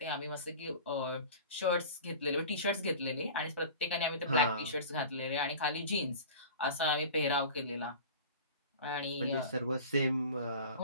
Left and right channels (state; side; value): inverted; both; correlation -0.38